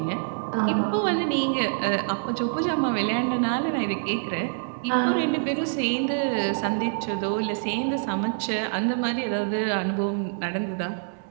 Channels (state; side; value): silent; left; 61 dB below the other